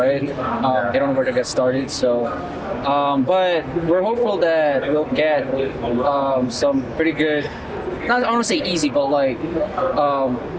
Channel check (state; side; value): identical; both; correlation 1.00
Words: They don't know where to get started. So, but we're hopeful that we'll get some pretty good. I don't want to say easy, but